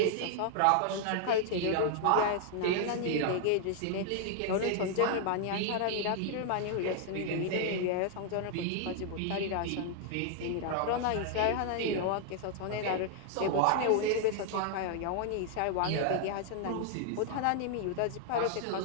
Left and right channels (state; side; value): different; both; correlation 0.00